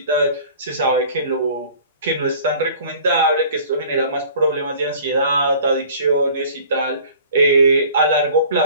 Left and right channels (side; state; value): both; inverted; correlation -0.48